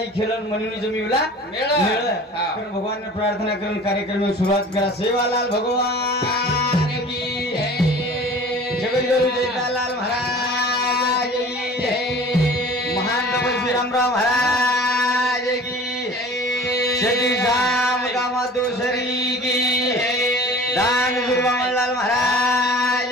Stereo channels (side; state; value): both; normal; correlation 0.43